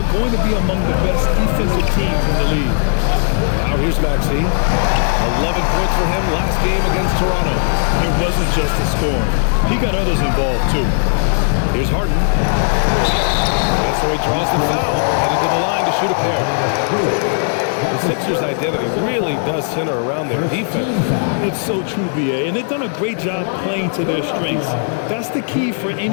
going to be among the best defensive teams in the league. Now here's Maxey. 11 points for him last game against Toronto. It wasn't just the scoring. He got others involved, too. Here's Harden. And so he draws the foul, headed to the line to shoot a pair. The Sixers' identity really does center around their defense. It's so true, BA, and they've done a great job playing to their strengths. That's the key for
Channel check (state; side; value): silent; right; digital silence